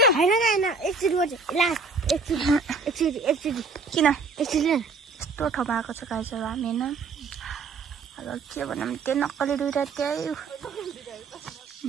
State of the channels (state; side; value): quieter; left; 4.3 dB